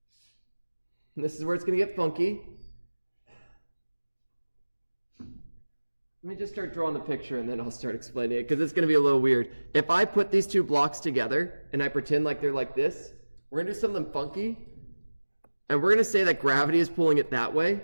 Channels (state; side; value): inverted; both; correlation -1.00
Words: And this is where it's going to get funky. Let me just start drawing the picture and then I'll start explaining it because it's going to be a little weird. If I put these 2 blocks together and I pretend like they're like this, we're going to do something funky. And we're going to say that gravity is pulling it that